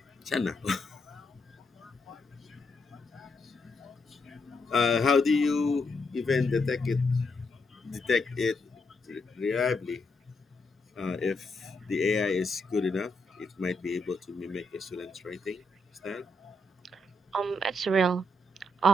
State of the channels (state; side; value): normal; both; correlation 0.80